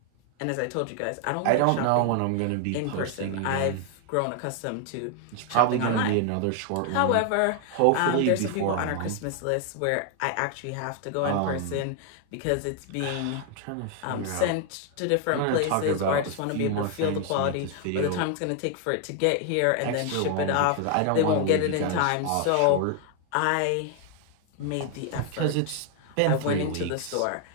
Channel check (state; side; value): different; both; correlation 0.00